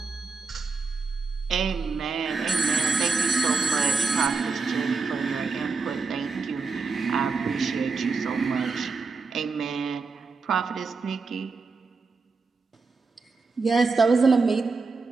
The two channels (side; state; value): left; quieter; 4.4 dB